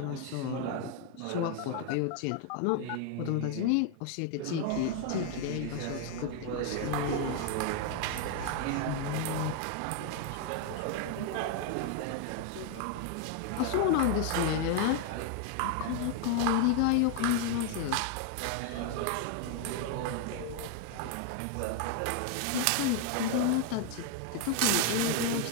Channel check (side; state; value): both; different; correlation 0.00